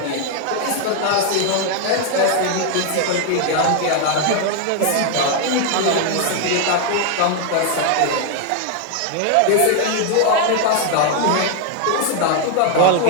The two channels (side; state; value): both; different; correlation 0.00